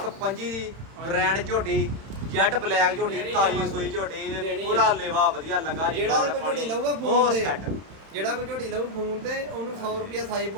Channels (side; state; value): left; late; 31 ms